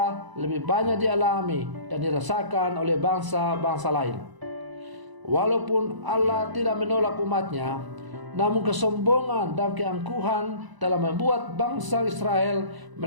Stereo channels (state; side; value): late; left; 1.0 ms